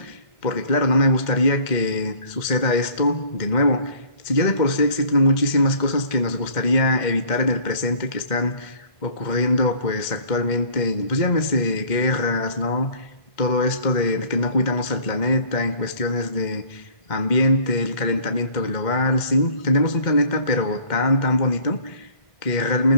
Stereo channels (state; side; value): late; right; 2.1 ms